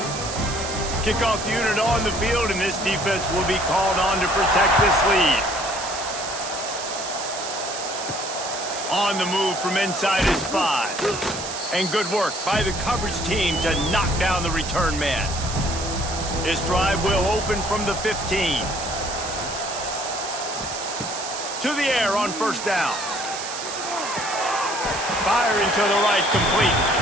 Kickoff unit on the field, and this defense will be called on to protect this lead. On the move from inside his 5. And good work by the coverage team to knock down the return man. This drive will open from the 15. To the air on first down. Firing to the right, complete.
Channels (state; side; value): noise; right; hiss, 7 dB below the sound